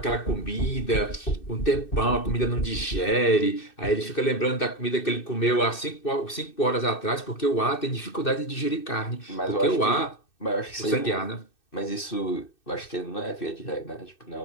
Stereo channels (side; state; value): right; late; 2.6 ms